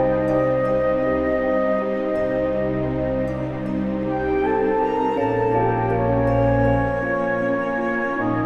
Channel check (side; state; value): both; identical; correlation 1.00